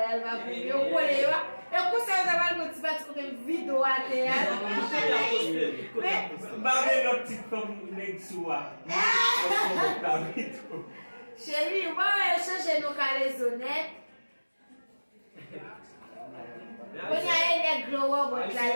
elle va venir. Yo collé yo. Et pour ça ça va le petit parti côté vidéo à théâtre. Barre notre petite femme Nexua. Chérie, on va changer nos Calezo net. When you neck glow up with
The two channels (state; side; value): inverted; both; correlation -1.00